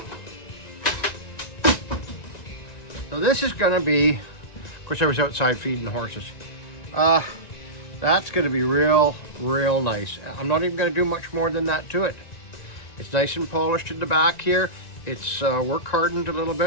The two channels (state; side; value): late; right; 1.9 ms